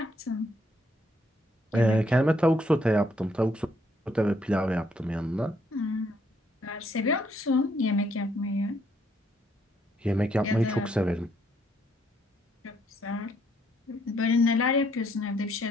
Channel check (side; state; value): both; normal; correlation 0.70